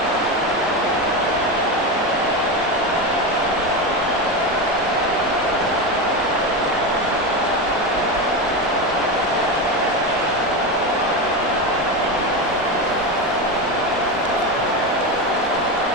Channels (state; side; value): normal; both; correlation 0.17